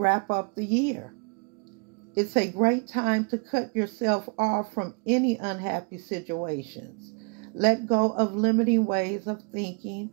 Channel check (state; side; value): quieter; left; 35.7 dB